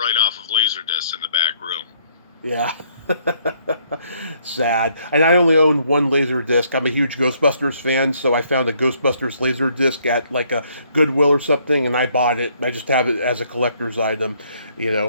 off of Laserdisc in the back room. Yeah. Sad. And I only own one Laserdisc. I'm a huge Ghostbusters fan, so I found a Ghostbusters Laserdisc at like a Goodwill or something, and I bought it. I just have it as a collector's item.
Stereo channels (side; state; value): both; inverted; correlation -0.68